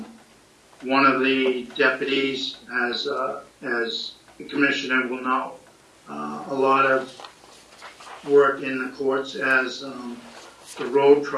of the deputies, as the commissioner will know, a lot of work in the courts as the road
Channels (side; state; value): both; identical; correlation 1.00